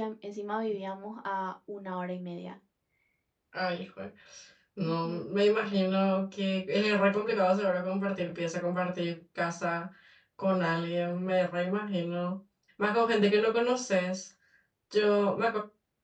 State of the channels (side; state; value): both; identical; correlation 1.00